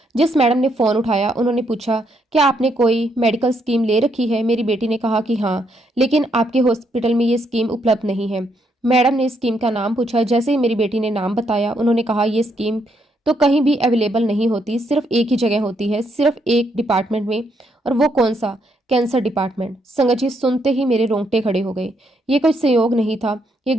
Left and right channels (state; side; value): normal; both; correlation 0.75